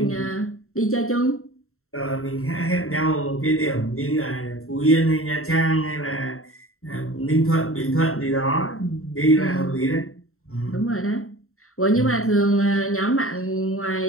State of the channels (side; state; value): right; late; 0.63 ms